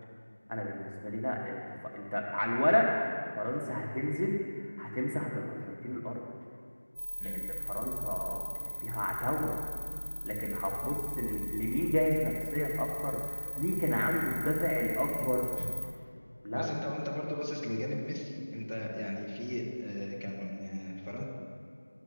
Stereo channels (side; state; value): both; inverted; correlation -1.00